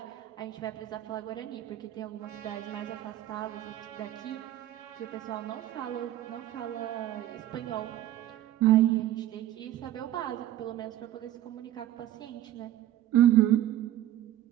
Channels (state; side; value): quieter; left; 13.1 dB